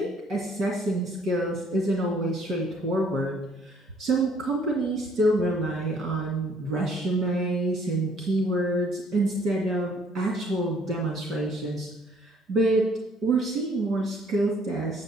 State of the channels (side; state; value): both; normal; correlation 0.61